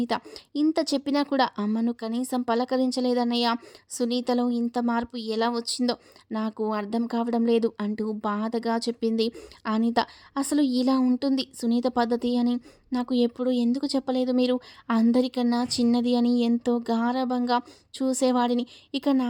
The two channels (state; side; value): identical; both; correlation 1.00